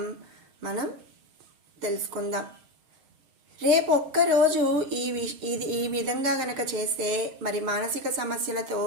మనం తెలుసుకుందాం. రేపు ఒక్కరోజు ఈ విధంగా గనక చేస్తే మానసిక సమస్యలతో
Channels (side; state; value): left; late; 6.4 ms